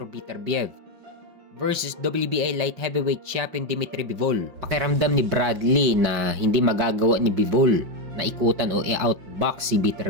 Beterbiev versus WBA Light Heavyweight Champion Dmitry Bivol. Pakiramdam ni Bradley na hindi magagawa ni Bivol na ikutan o i-outbox si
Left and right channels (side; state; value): left; late; 5.6 ms